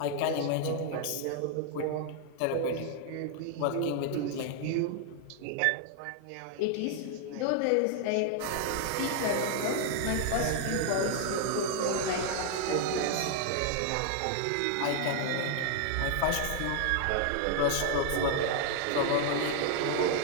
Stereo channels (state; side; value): different; both; correlation 0.00